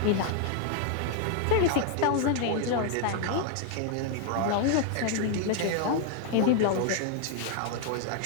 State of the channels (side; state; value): both; different; correlation 0.00